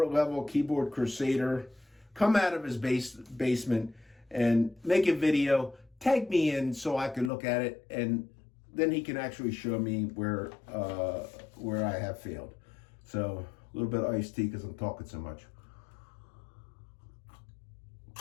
level keyboard crusader. Come out of his basement and make a video, tag me in so I can look at it, and then he can actually show me where I have failed. So a little bit of iced tea because I'm talking so much.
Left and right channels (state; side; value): drops out; right; at 7.3 s